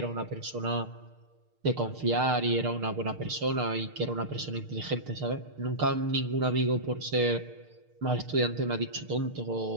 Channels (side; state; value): left; late; 6.6 ms